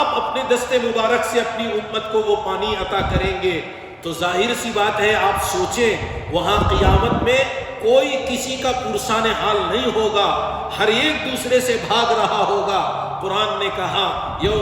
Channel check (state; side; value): identical; both; correlation 1.00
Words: اپنے دست مبارک سے اپنی امت کو وہ پانی عطا کریں گے۔ تو ظاہر سی بات ہے، آپ سوچیں وہاں قیامت میں کوئی کسی کا پرسان حال نہیں ہوگا، ہر ایک دوسرے سے بھاگ رہا ہوگا۔ قرآن نے کہا